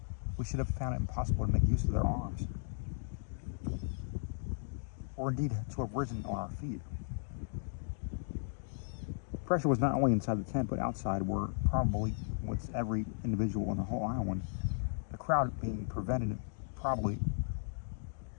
we should have found it impossible to make use of their arms, or indeed to have risen on our feet. Pressure was not only inside the tent, but outside, where probably with every individual on the whole island, the crowd being prevented probably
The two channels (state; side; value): silent; right; digital silence